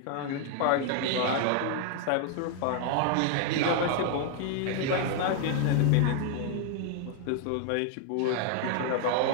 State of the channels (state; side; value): different; both; correlation 0.00